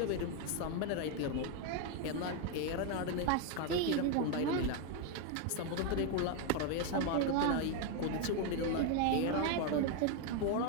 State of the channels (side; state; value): both; different; correlation 0.01